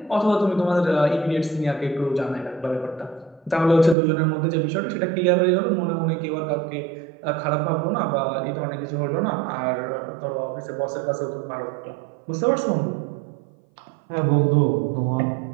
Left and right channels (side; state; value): left; drops out; at 4.0 s